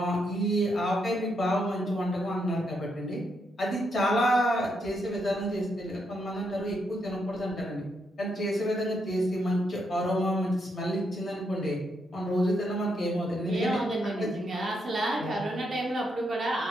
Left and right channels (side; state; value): both; normal; correlation 0.79